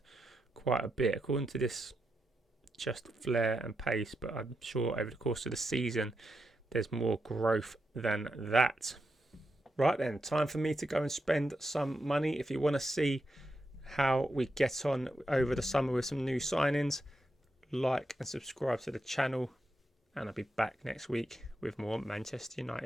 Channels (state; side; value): normal; both; correlation 0.85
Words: quite a bit. According to this, just flair and pace, but I'm sure over the course of the season, there's more growth than that. Right then, time for me to go and spend some money. If you want to see how we get on over the summer with some new signings, like and subscribe to the channel. And I'll be back next week with more Manchester